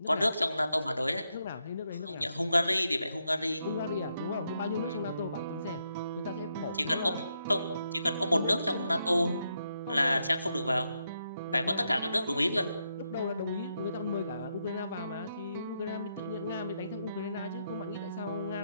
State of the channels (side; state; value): both; inverted; correlation -0.80